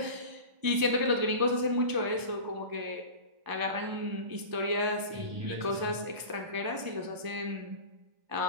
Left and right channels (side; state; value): left; late; 1.0 ms